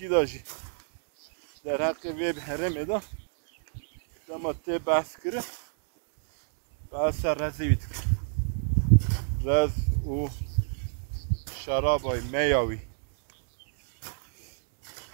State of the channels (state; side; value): silent; left; digital silence